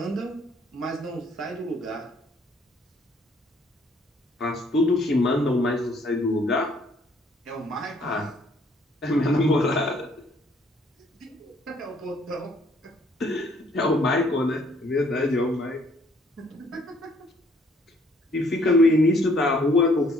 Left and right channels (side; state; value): both; normal; correlation 0.63